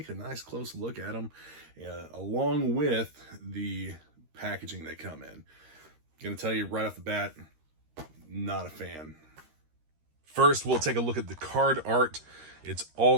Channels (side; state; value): left; late; 13 ms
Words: a nice close look at them along with the packaging they come in. Going to tell you right off the bat, not a fan. First, we'll take a look at the card art. It's all